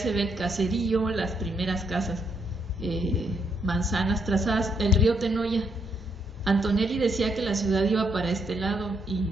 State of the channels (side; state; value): both; normal; correlation 0.76